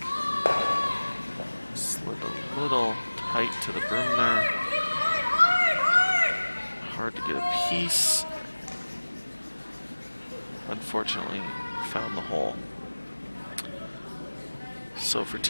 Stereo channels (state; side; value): inverted; both; correlation -1.00